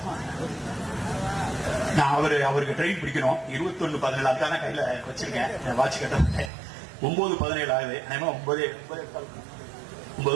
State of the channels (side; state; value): left; drops out; at 6.5 s